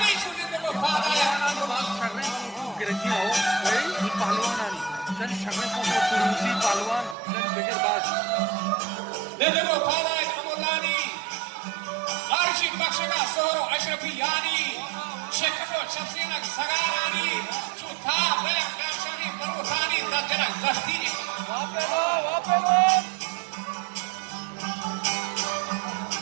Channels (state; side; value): drops out; left; at 7.2 s